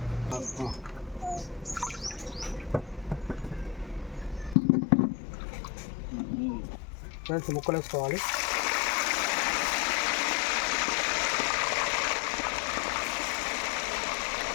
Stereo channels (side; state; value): right; drops out; at 4.5 s